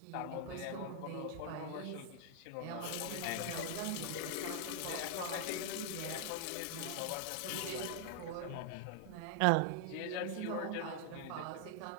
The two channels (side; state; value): both; different; correlation 0.00